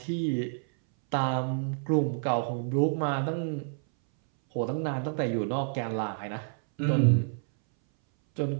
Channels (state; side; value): silent; left; 59 dB below the other